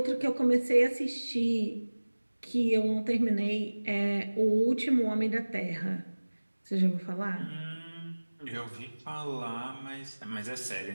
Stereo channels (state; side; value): inverted; both; correlation -1.00